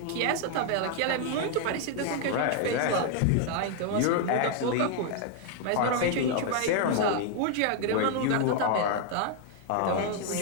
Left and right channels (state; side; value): different; both; correlation 0.00